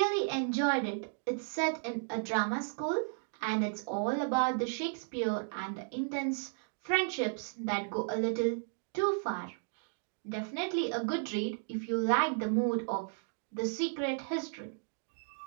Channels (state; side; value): silent; left; digital silence